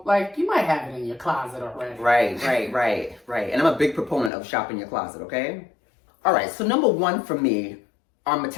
like, you might have it in your closet already. Right. And I'm a big proponent of shopping your closet, okay? All right, so number one for me are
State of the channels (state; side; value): drops out; right; at 4.3 s